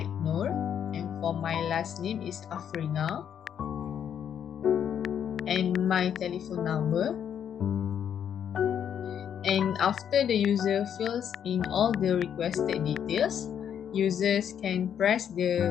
Nur, and for my last name is AFRINA. And my telephone number. And after the user fills in all the requested details, users can press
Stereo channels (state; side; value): quieter; right; 8.8 dB